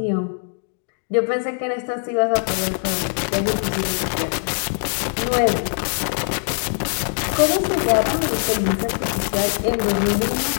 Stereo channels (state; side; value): silent; right; digital silence